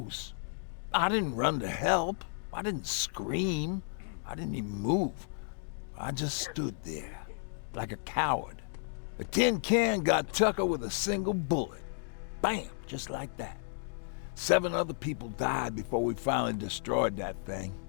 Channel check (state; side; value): silent; right; digital silence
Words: I didn't run to help. I didn't scream. I didn't even move. I just stood there, like a coward. A tin can got Tucker with a single bullet. Bam, just like that. 7 other people died before we finally destroyed that thing.